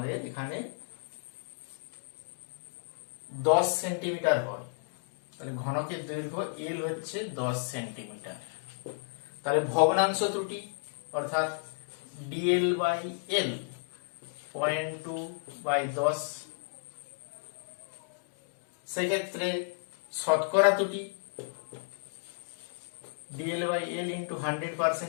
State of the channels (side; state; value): right; silent; digital silence